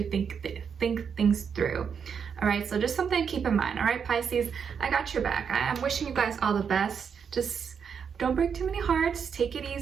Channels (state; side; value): quieter; left; 6.8 dB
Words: think things through. All right, so just something to keep in mind. All right, Pisces, I got your back. I'm wishing you guys all the best. Just don't break too many hearts, take it